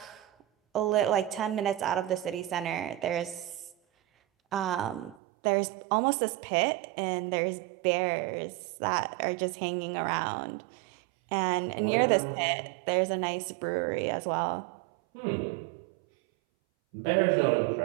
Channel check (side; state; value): left; drops out; at 5.2 s